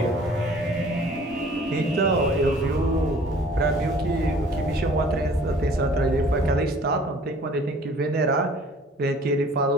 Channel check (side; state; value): both; normal; correlation 0.52